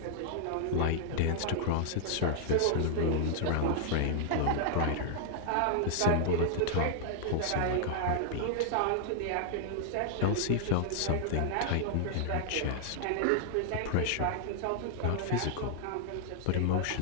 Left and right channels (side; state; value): both; different; correlation 0.00